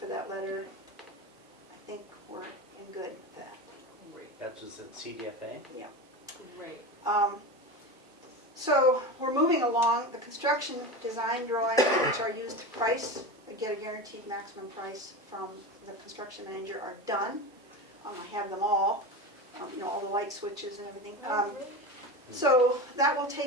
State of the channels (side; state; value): both; normal; correlation 0.25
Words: that letter. I think we're in good with that. That was at CDFA? Yeah. Great. So we're moving along. The construction design drawings, which are used to price, get a guaranteed maximum price from the construction manager, are done. I have them all, all the light switches and everything. So that will